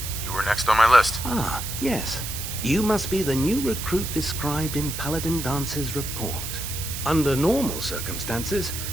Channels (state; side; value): noise; right; hiss, 6 dB below the sound